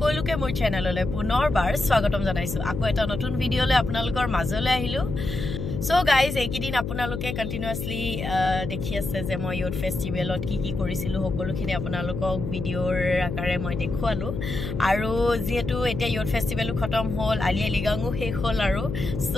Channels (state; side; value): noise; left; hum, 5 dB below the sound